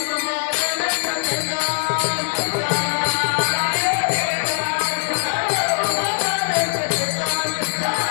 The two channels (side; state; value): right; silent; digital silence